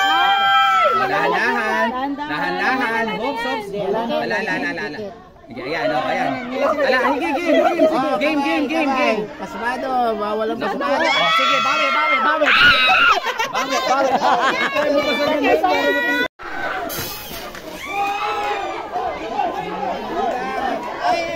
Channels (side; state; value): both; identical; correlation 1.00